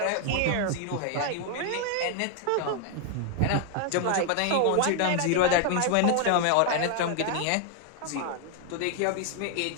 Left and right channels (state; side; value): different; both; correlation 0.00